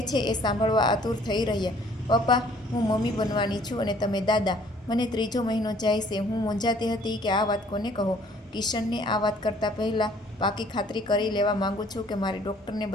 છે એ સાંભળવા આતુર થઈ રહ્યા. પપ્પા, હું મમ્મી બનવાની છું અને તમે દાદા. મને 3જો મહિનો જાય છે. હું મૂંઝાતી હતી કે આ વાત કોને કહો. કિશનને આ વાત કરતાં પહેલાં પાકી ખાતરી કરી લેવા માગું છું કે મારે ડૉક્ટરને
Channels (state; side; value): normal; both; correlation 0.58